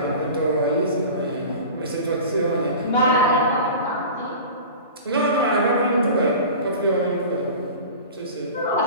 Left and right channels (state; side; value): inverted; both; correlation -0.36